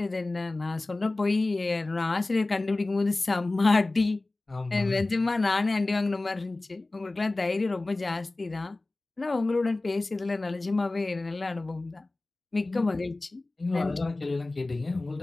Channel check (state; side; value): quieter; right; 3.0 dB